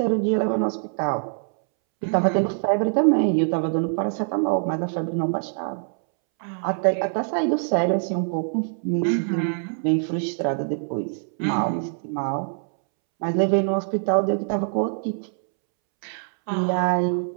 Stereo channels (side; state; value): left; silent; 63 dB below the other